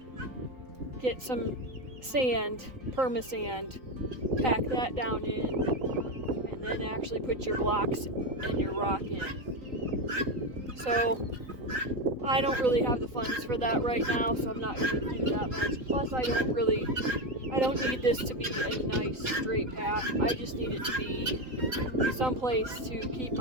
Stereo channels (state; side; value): late; left; 3.9 ms